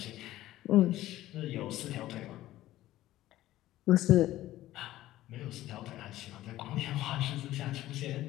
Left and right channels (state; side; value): quieter; right; 15.0 dB